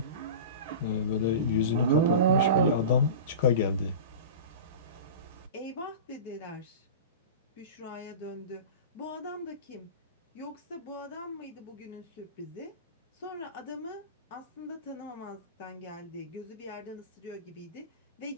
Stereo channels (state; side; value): inverted; both; correlation -0.30